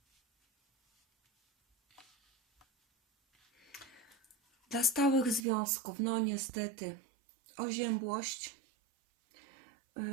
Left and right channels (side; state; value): left; drops out; at 5.5 s